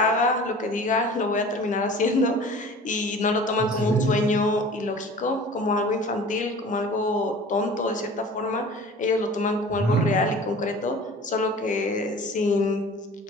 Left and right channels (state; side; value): normal; both; correlation 0.42